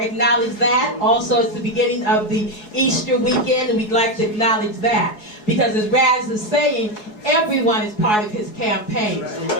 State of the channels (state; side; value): late; right; 4.7 ms